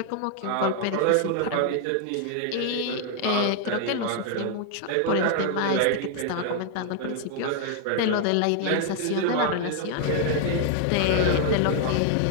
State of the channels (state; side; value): different; both; correlation 0.00